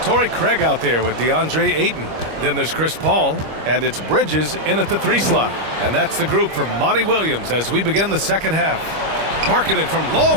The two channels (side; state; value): left; late; 25 ms